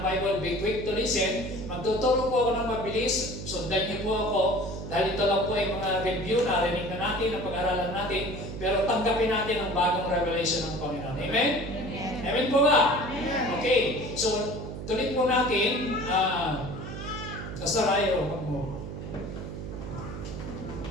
Bible, be quick to listen. Magtuturo po ako ng mabilis, sundan niyo po ako. Dahil ito lang po ay mga review, narinig na natin, na pag-aralan natin. Pero tanggapin natin ang bagong revelation ng Panginoon. Amen? Amen, Amen po ba? Amen. Okay, so tuloy po natin. Pastor Ayo, wag mo.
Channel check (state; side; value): noise; right; hum, 8 dB below the sound